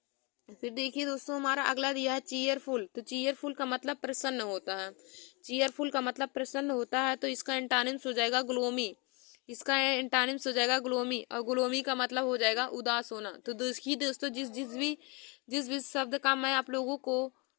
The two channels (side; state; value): right; quieter; 30.2 dB